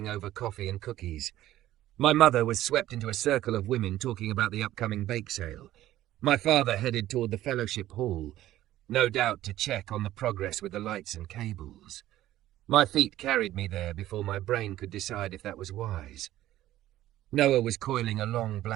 over coffee and cookies. My mother was swept into a circle of women talking about the upcoming bake sale. My father headed toward the fellowship hall, no doubt to check on the progress with the lights and cables. My feet carried me there before my brain could decide if that was wise. Noah was coiling a long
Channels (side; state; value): left; quieter; 14.2 dB